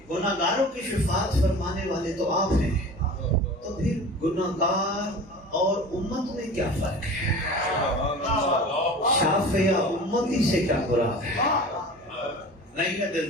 گناہگاروں کی شفاعت فرمانے والے تو آپ ہیں, تو پھر گناہگار اور امت میں کیا فرق ہے؟ شافعیہ امتی سے کیا مراد ہے؟ نہیں ہے دل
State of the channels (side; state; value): both; normal; correlation 0.38